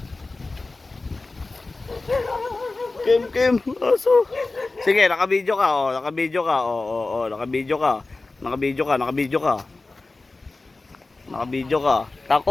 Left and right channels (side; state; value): right; quieter; 3.4 dB